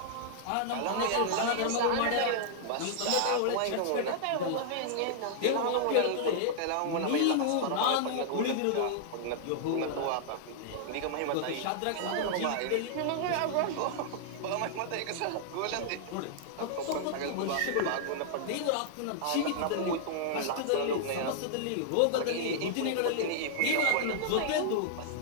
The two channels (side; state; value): both; different; correlation -0.01